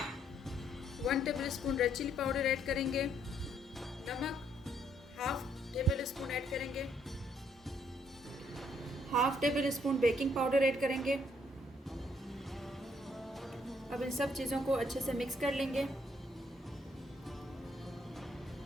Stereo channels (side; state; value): both; normal; correlation 0.70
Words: 1 tablespoon red chili powder add करेंगे, नमक हाफ टेबल स्पून ऐड करेंगे, half tablespoon baking powder add करेंगे। अब इन सब चीज़ों को अच्छे से मिक्स कर लेंगे।